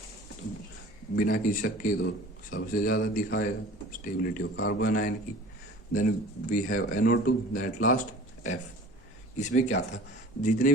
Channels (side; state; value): both; normal; correlation 0.43